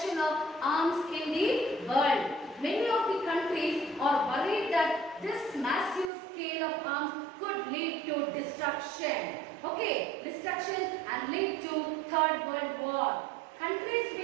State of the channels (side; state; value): left; drops out; at 6.1 s